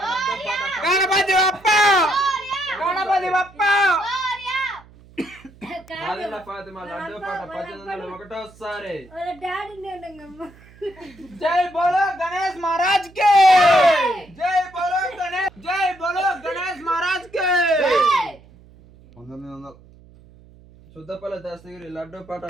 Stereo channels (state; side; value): noise; right; hum, 24 dB below the sound